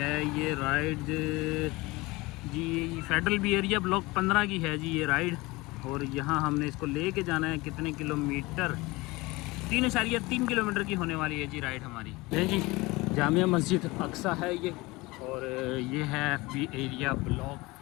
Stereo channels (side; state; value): right; quieter; 22.2 dB